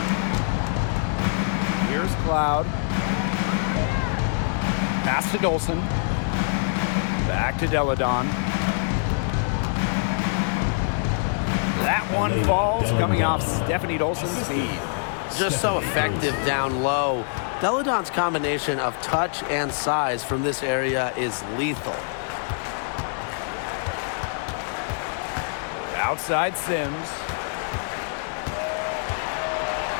Here's Cloud. Pass to Dolson. Back to Deladon. That one falls coming off Stephanie Dolson's speed. Just so effective down low. Deladon's combination of touch and size from this area is lethal. Outside Sims.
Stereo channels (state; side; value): silent; right; 62 dB below the other